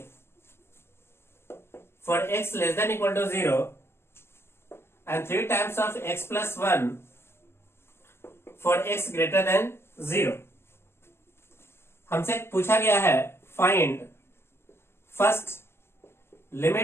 for x less than equal to 0 and 3 times of x plus 1 for x greater than 0। हमसे पूछा गया है find first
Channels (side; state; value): right; late; 0.12 ms